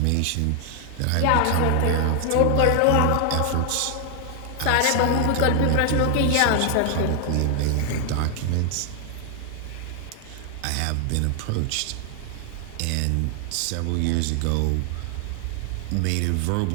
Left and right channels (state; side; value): different; both; correlation 0.00